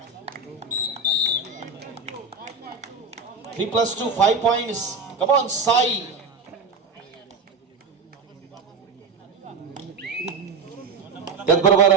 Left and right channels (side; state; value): left; quieter; 4.5 dB